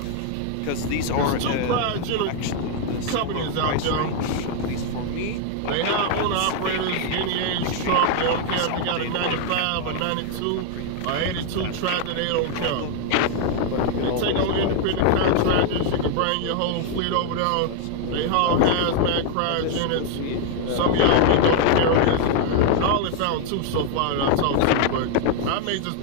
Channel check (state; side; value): different; both; correlation 0.00